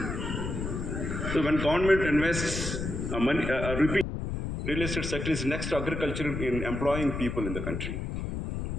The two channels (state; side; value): noise; left; rumble, 4 dB below the sound